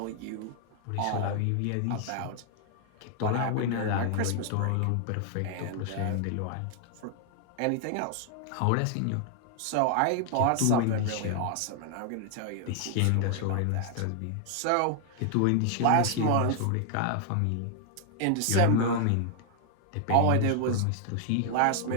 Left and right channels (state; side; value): different; both; correlation 0.00